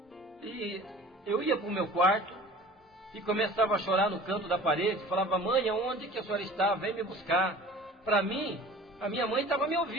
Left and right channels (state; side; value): normal; both; correlation 0.43